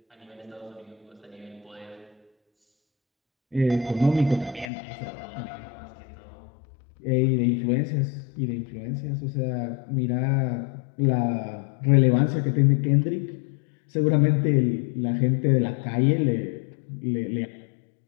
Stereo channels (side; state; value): right; drops out; at 4.7 s